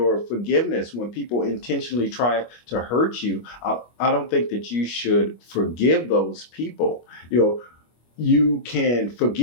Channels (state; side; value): late; right; 25 ms